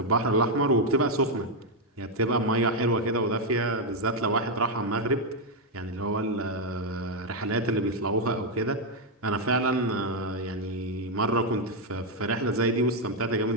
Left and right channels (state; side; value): normal; both; correlation 0.01